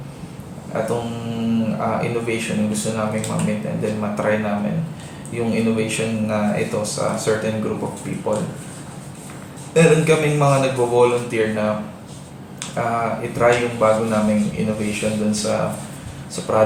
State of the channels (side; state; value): both; identical; correlation 1.00